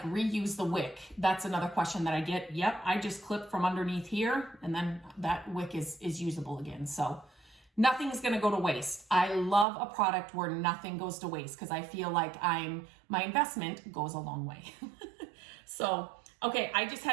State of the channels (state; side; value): drops out; left; at 9.7 s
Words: reuse the wick, that's another question that I get. Yep, I just clip from underneath here and then that wick is usable again. So nothing's gonna go to waste. I love a product where nothing goes to waste because I feel like my investment goes a long way. So, okay, I just